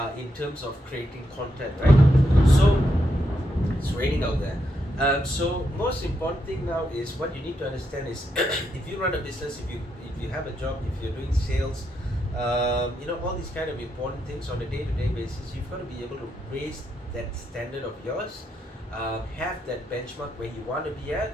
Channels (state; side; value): normal; both; correlation 0.81